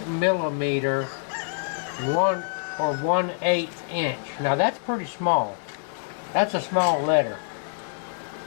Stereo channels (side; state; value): right; silent; digital silence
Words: 1/8 inch. Now that's pretty small. That's a small letter.